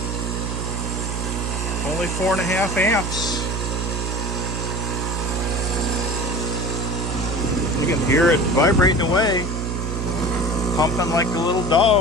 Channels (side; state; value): right; noise; hum, 2 dB below the sound